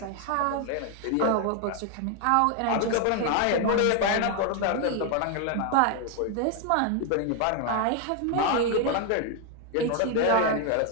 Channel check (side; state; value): both; different; correlation 0.01